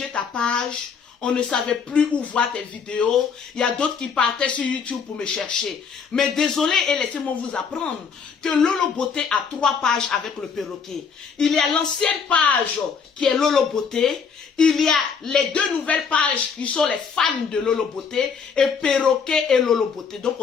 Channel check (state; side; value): quieter; right; 6.0 dB